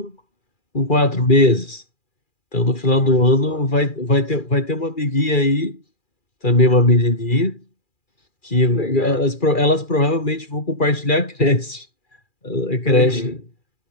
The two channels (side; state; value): right; late; 2.4 ms